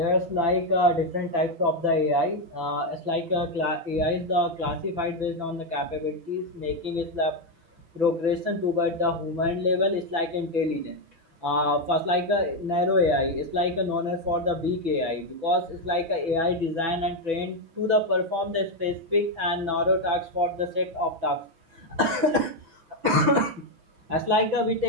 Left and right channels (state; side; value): late; left; 6.0 ms